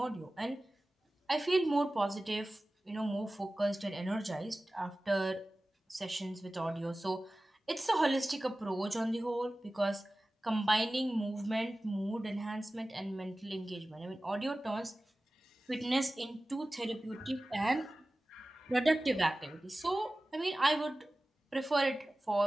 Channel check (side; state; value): both; normal; correlation 0.96